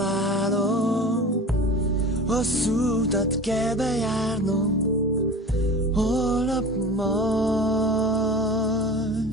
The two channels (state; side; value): normal; both; correlation 0.36